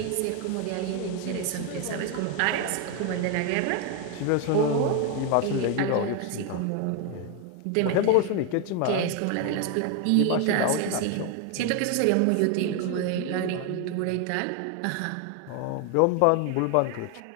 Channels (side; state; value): both; different; correlation 0.01